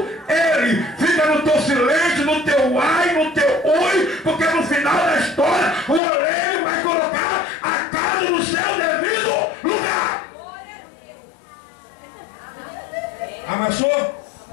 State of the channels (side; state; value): right; drops out; at 6.0 s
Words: ele. Fica no teu silêncio, no teu ar.